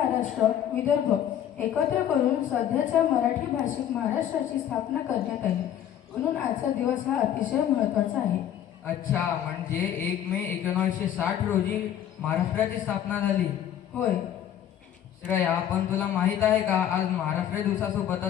विदर्भ एकत्र करून सध्याच्या मराठी भाषिक महाराष्ट्राची स्थापना करण्यात आली. म्हणून आजचा दिवस हा अतिशय महत्त्वाचा आहे. अच्छा, म्हणजे 1 मे 1960 रोजी महाराष्ट्राची स्थापना झाली. होय श्रेया, पण तुला माहित आहे का आज महाराष्ट्र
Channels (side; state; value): right; quieter; 10.4 dB